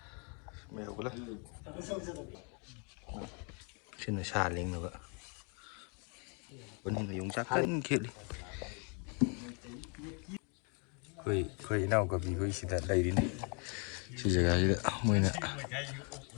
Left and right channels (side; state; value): right; quieter; 36.0 dB